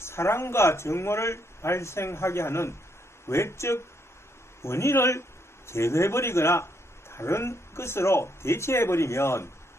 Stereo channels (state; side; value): normal; both; correlation 0.74